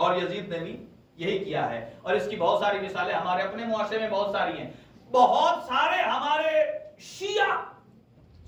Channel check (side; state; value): both; identical; correlation 1.00